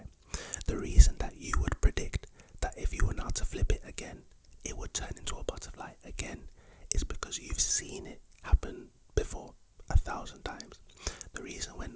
the reason that you would predict that if you were now to flip it again, it would turn into a butterfly again, is because you've seen it happen before 1,000 times. The reason when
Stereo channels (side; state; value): both; identical; correlation 1.00